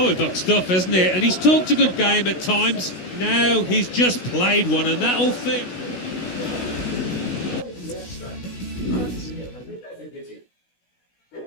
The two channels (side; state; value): right; late; 16 ms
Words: stuff, isn't it? And he's talked a good game at times. Now he's just played one, and that'll fit.